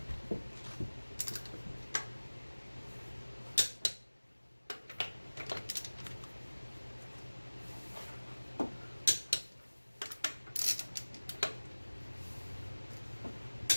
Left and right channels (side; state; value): both; inverted; correlation -1.00